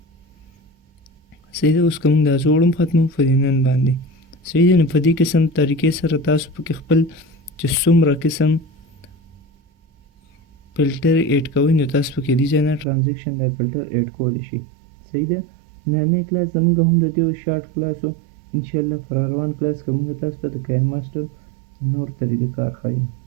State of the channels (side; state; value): left; drops out; at 12.9 s